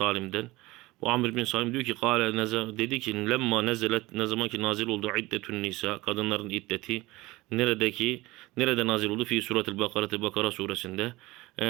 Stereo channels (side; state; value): left; quieter; 20.3 dB